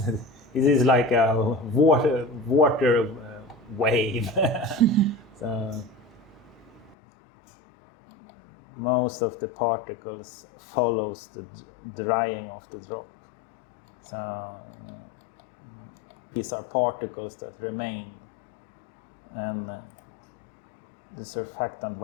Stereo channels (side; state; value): right; drops out; at 7.0 s